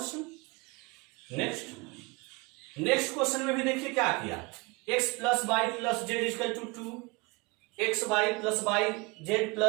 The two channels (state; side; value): quieter; left; 26.9 dB